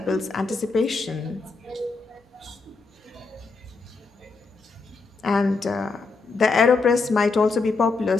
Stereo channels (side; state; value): right; quieter; 4.1 dB